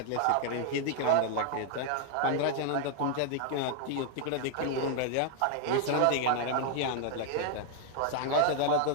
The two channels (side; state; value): both; different; correlation 0.00